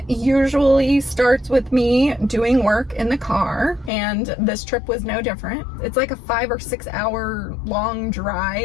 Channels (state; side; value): drops out; right; at 3.9 s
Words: usually starts with me doing work in the car, and this trip was no different. It's like a 5 or 6 hour long